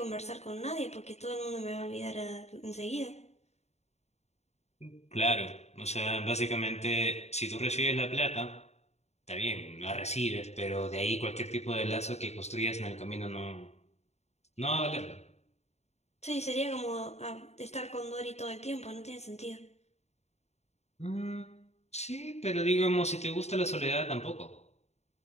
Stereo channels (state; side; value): late; right; 0.32 ms